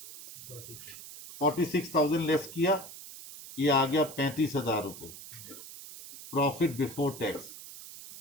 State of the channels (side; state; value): right; noise; hiss, 14 dB below the sound